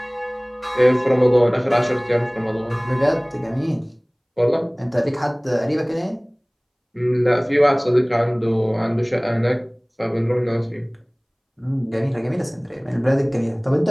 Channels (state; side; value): identical; both; correlation 1.00